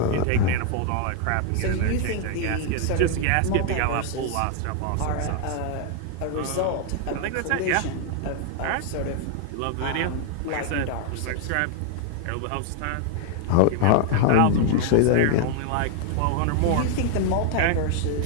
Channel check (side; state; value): both; different; correlation 0.00